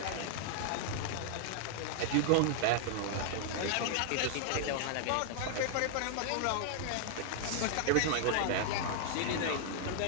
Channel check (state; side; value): different; both; correlation 0.00